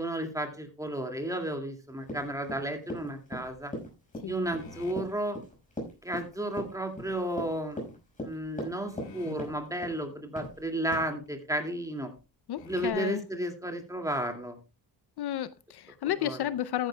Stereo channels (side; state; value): both; normal; correlation 0.40